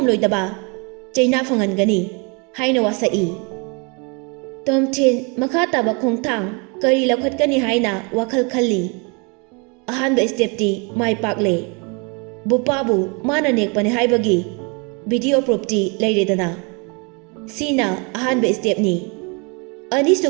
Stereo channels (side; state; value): left; quieter; 32.3 dB